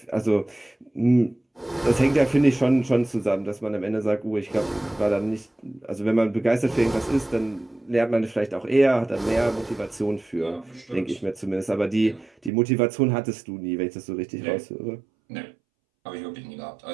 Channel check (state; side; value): drops out; left; at 12.5 s